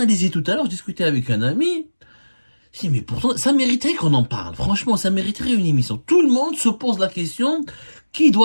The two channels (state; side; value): inverted; both; correlation -1.00